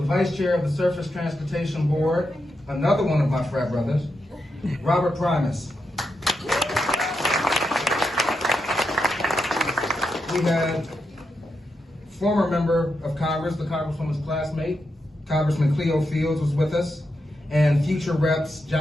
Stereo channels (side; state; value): both; normal; correlation 0.85